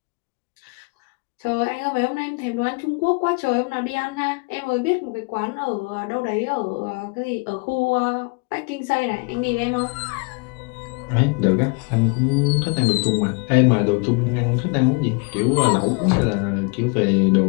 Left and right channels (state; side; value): quieter; right; 31.1 dB